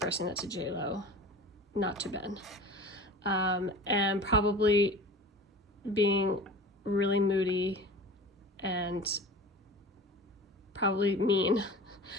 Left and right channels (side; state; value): both; normal; correlation 0.37